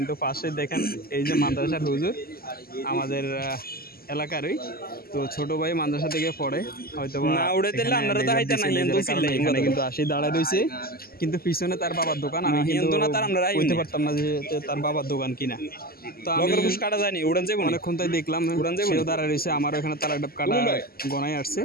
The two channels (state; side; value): late; right; 0.44 ms